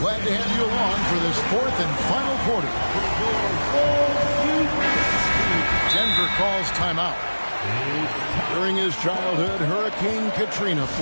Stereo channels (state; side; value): inverted; both; correlation -1.00